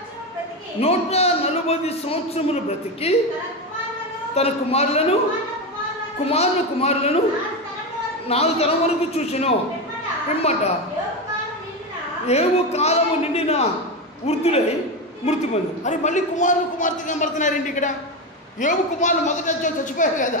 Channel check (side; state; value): both; normal; correlation 0.15